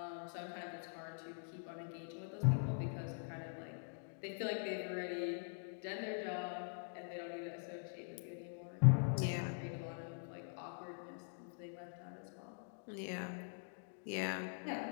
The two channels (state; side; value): silent; right; digital silence